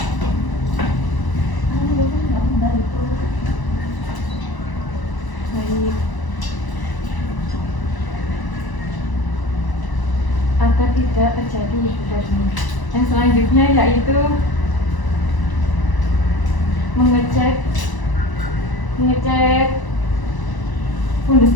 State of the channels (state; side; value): late; right; 1.0 ms